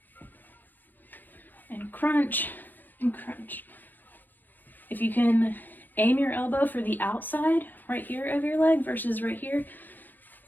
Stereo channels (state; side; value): late; right; 0.087 ms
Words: And crunch, and crunch. If you can aim your elbow for the outside right here of your leg versus right here,